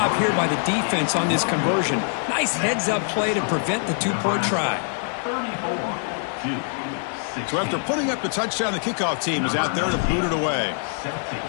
here by the defense on this conversion. Nice heads-up play to prevent the 2-point try. So after putting up the touchdown, the kickoff team is out there to boot it away.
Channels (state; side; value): silent; right; 63 dB below the other